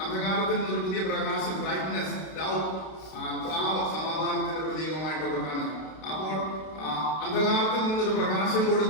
അന്ധകാരത്തിൽ നിന്നൊരു പുതിയ പ്രകാശം, ബ്രൈറ്റ്നെസ്, ലവ്, സമാധാനത്തിന്റെ പ്രതീകമായിട്ടൊക്കെ കാണുന്നു. അപ്പോൾ അന്ധകാരത്തിൽ നിന്നൊരു പ്രകാശം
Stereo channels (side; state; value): right; late; 32 ms